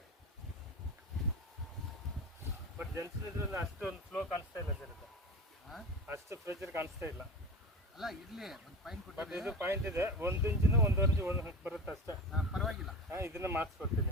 ಬಟ್ ಜೆನ್ಸಿನ್ ಇದ್ರಲ್ಲಿ ಅಷ್ಟೊಂದು ಫ್ಲೋ ಕಾಣಿಸ್ತಾ ಇಲ್ಲ ಸರ್. ಅಷ್ಟು ಪ್ರೆಷರ್ ಕಾಣಿಸ್ತಾ ಇಲ್ಲ. ಅಲ್ಲ ಇರಲಿ, ಒಂದು ಪಾಯಿಂಟ್ ಕೊಟ್ಟು. ಬಟ್ ಇದು ಪಾಯಿಂಟ್ ಇದೆ, 1 ಇಂಚಿನ 1.5 ಇಂಚ್ ಬರುತ್ತೆ ಅಷ್ಟೇ. ಪರವಾಗಿಲ್ಲ. ಇದನ್ನ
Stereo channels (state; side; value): normal; both; correlation 0.30